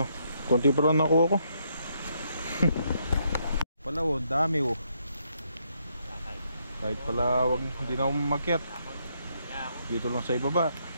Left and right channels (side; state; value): both; inverted; correlation -0.75